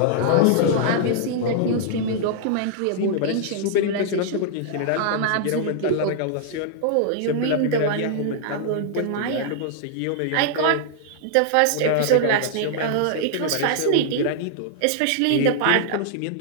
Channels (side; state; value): both; different; correlation -0.01